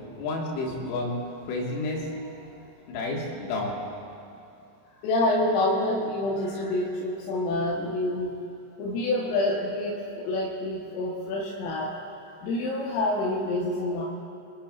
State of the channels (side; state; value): right; late; 30 ms